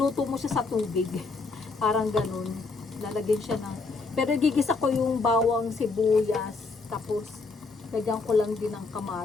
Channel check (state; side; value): quieter; right; 4.0 dB